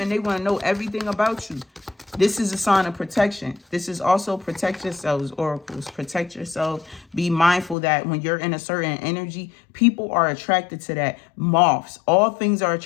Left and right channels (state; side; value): drops out; right; at 7.8 s